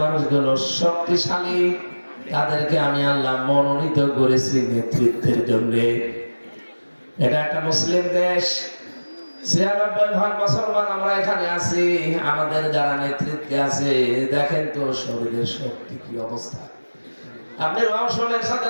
মানুষগুলো শক্তিশালী, তাদেরকে আমি আল্লাহ মনোনীত করেছি নেতৃত্বের জন্য। এটা একটা মুসলিম দেশ, 96% মুসলমান আমরা এখানে আছি। আমাদের যারা নেতৃত্বে আছে, দেখেন তো শরীরের শক্তি কি অবস্থা। আপনি রওশনের সাথে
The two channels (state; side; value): inverted; both; correlation -1.00